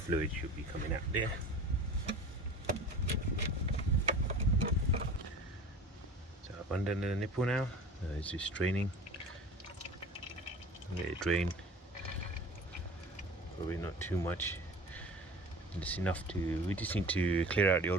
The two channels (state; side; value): normal; both; correlation 0.39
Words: should be coming out there. So I've undone the nipple now. It's just draining. Let it drain. Probably not too much. Just enough to. We just need to clear out the